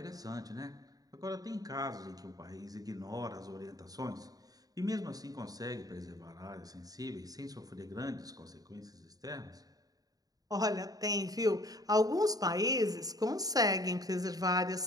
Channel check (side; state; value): left; late; 0.18 ms